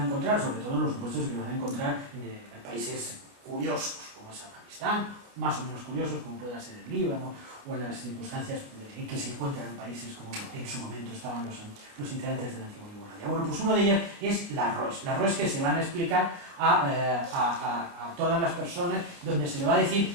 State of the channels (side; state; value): left; late; 28 ms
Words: encontrar, sobre todo en los supuestos que van a encontrar en países curiosos, como es Afganistán, más o menos curiosos, como pueda ser el Líbano, o en las circunstancias en que se encuentran en países como en su momento estaban los integrantes de la antigua Yugoslavia. Bueno, pues uno de ellas es las ROEs que se van a explicar a todas las personas, donde se le va a decir